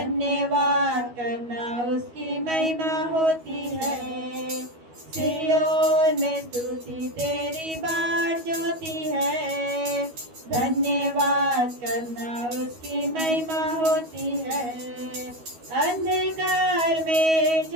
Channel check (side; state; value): left; late; 12 ms